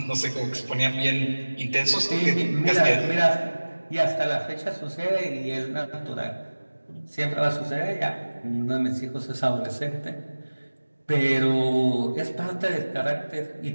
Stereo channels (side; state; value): both; inverted; correlation -1.00